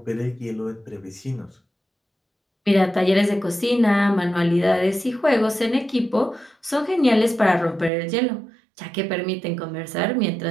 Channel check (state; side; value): drops out; left; at 7.9 s